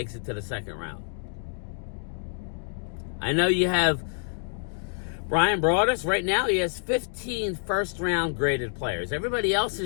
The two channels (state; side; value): silent; right; 60 dB below the other